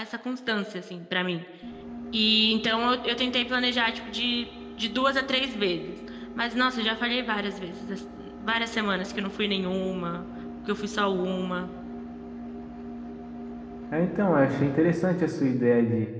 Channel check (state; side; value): identical; both; correlation 1.00